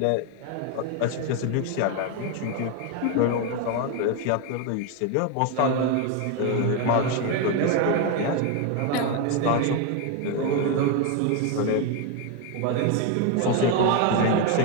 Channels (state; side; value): different; both; correlation 0.01